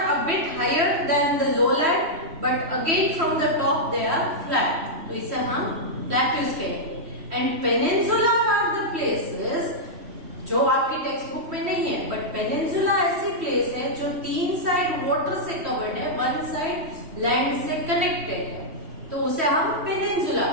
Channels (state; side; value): late; left; 3.1 ms